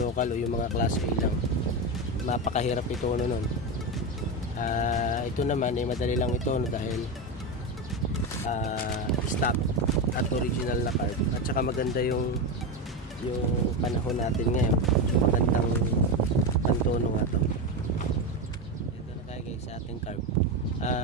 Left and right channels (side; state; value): both; normal; correlation 0.15